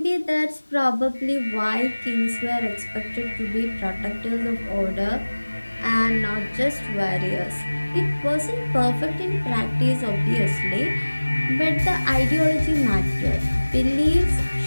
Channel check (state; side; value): inverted; both; correlation -1.00